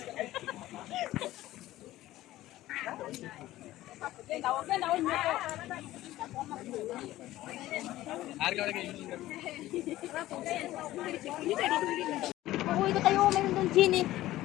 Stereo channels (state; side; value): quieter; right; 15.6 dB